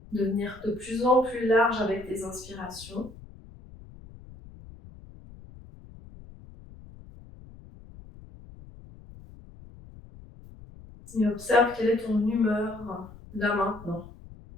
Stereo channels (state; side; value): noise; left; rumble, 19 dB below the sound